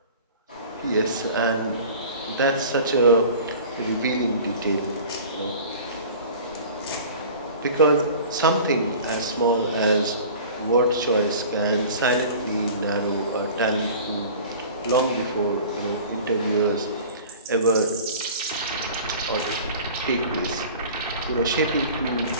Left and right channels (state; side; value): inverted; both; correlation -0.41